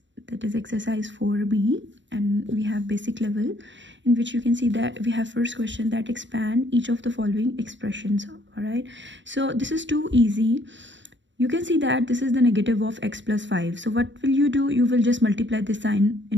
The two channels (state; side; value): late; left; 0.54 ms